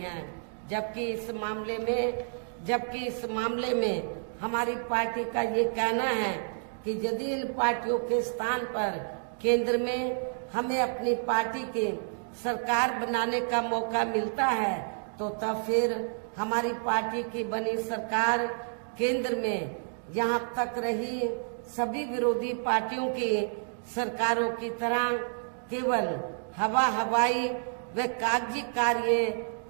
हैं। जबकि इस मामले में हमारी पार्टी का ये कहना है कि यदि इन पार्टियों के स्थान पर केंद्र में हमें अपनी पार्टी की सरकार बनाने का मौका मिलता है तो तब फिर हमारी पार्टी की बनी सरकार केंद्र में यहाँ तक रही सभी विरोधी पार्टियों की सरकारों की तरह केवल हवाई व कागजी कार्य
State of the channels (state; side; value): silent; left; digital silence